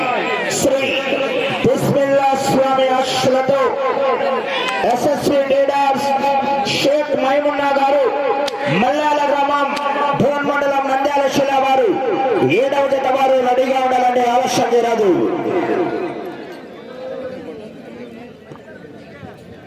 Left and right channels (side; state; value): both; identical; correlation 1.00